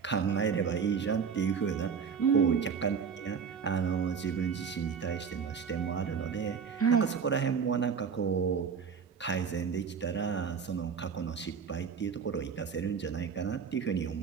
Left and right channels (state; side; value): quieter; left; 6.4 dB